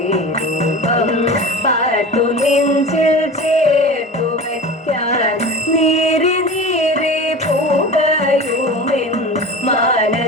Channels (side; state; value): both; normal; correlation 0.33